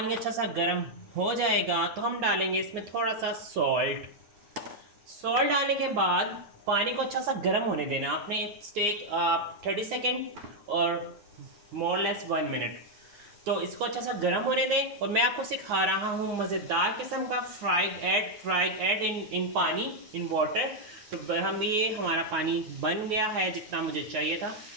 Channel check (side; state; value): left; late; 9.6 ms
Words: अच्छा सा गर्म हो जाएगा तो हम डालेंगे इसमें थोड़ा सा सॉल्ट। सॉल्ट डालने के बाद पानी को अच्छा सा गर्म होने देना आपने। टेक 30 सेकेंड और मोर लेस 1 मिनट। तो इसको अच्छा सा गर्म होने दें और मैं आपको सिखा रहा हूँ मज़ेदार किस्म का फ्राइड एग इन पानी, इन वाटर। तो हम ये हमारा पानी बन गया है जितना मुझे चाहिए था।